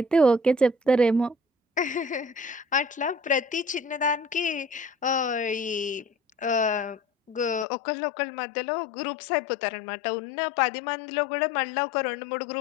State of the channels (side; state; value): right; drops out; at 7.7 s